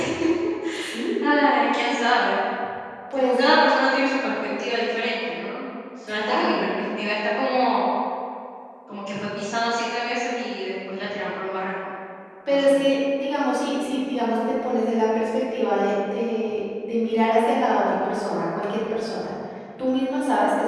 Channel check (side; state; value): both; identical; correlation 1.00